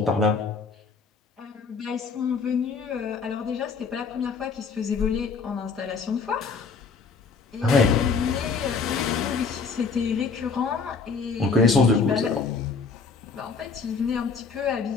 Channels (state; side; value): quieter; right; 4.9 dB